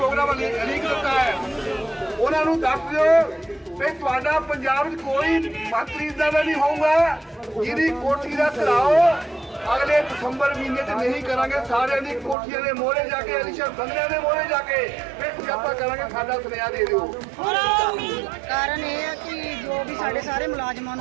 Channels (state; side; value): drops out; left; at 12.4 s